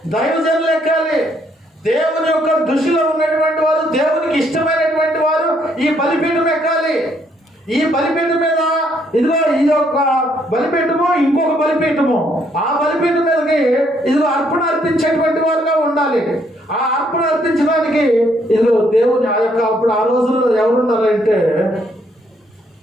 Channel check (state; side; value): normal; both; correlation 0.70